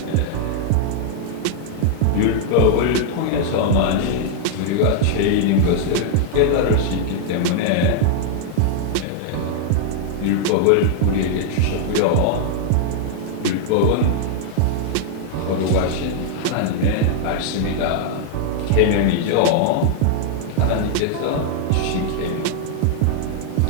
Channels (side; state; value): both; different; correlation -0.01